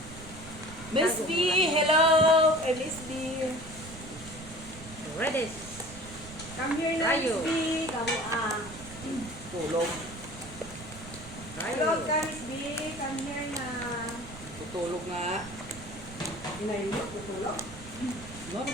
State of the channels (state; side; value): noise; right; rumble, 14 dB below the sound